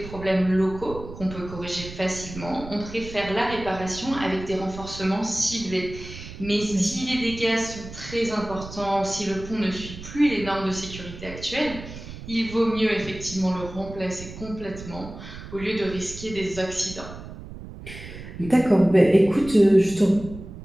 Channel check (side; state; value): right; noise; rumble, 13 dB below the sound